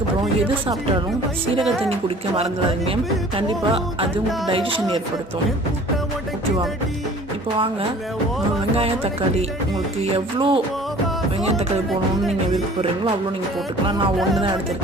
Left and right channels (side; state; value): both; normal; correlation 0.48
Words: எது சாப்பிட்டாலும் சீரக தண்ணி குடிக்க மறந்துடாதீங்க. கண்டிப்பாக அது உங்களுக்கு டைஜஷன் ஏற்படுத்தும். ஓகேவா? இப்போ வாங்க, வெங்காயம் தக்காளி உங்களுக்கு எவ்வளோ வெங்காயம் தக்காளி போடணும்னு நீங்கள் விருப்பப்படுறீங்களோ அவ்வளோ நீங்கள் போட்டுக்கலாம். நான் ஒன்று தான்